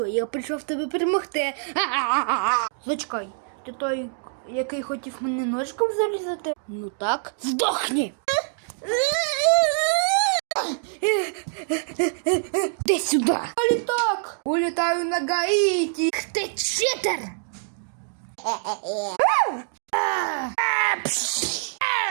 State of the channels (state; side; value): silent; left; 62 dB below the other